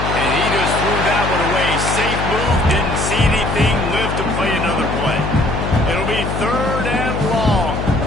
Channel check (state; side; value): noise; left; hum, 3 dB below the sound